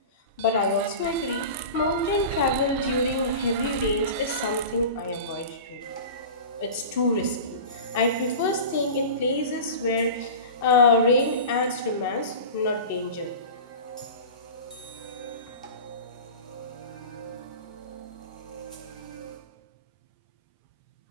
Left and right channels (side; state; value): both; inverted; correlation -0.33